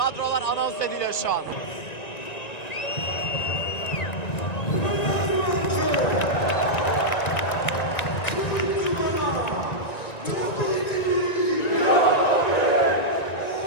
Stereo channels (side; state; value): right; late; 1.9 ms